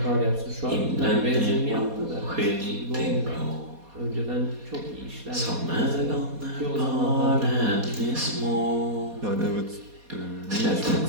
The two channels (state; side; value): late; left; 4.2 ms